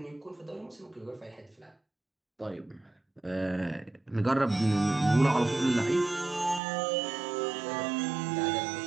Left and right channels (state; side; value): drops out; left; at 6.6 s